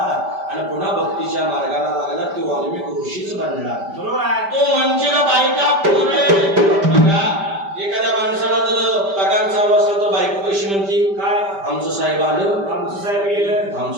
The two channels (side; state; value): left; late; 5.1 ms